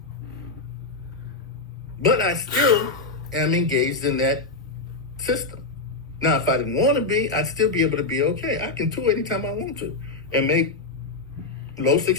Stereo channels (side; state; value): right; quieter; 3.5 dB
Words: But I still am engaged in that system. Now, if I didn't want to be, I'd still be able to be okay. I can tour anytime I want to and make low